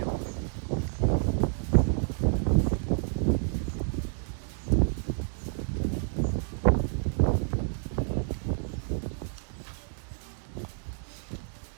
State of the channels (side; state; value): left; silent; 58 dB below the other